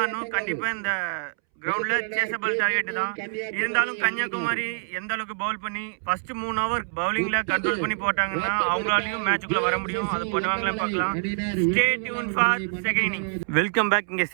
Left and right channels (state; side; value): silent; left; 61 dB below the other